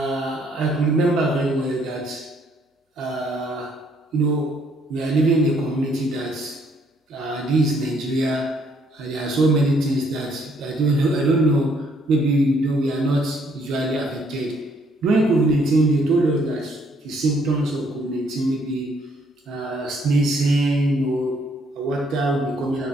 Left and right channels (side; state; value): both; normal; correlation 0.67